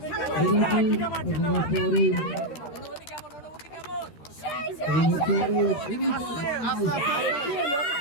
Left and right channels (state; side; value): late; right; 13 ms